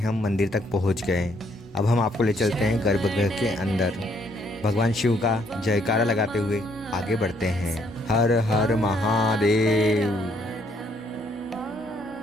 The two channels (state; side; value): normal; both; correlation 0.69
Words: मंदिर तक पहुँच गए। अब हम आपको ले चलते हैं गर्भगृह के अंदर। भगवान शिव का जयकारा लगाते हुए आगे बढ़ते हैं। हर हर महादेव।